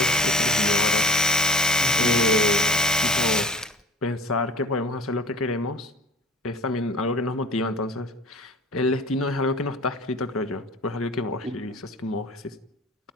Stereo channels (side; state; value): both; normal; correlation 0.42